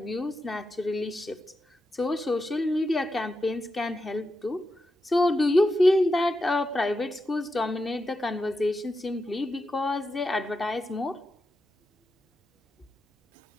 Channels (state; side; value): normal; both; correlation 0.88